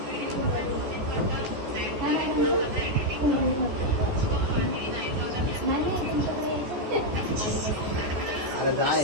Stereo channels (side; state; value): left; late; 14 ms